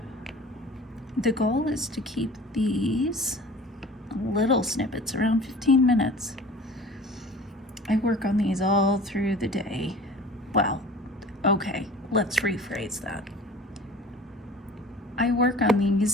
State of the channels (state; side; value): normal; both; correlation 0.43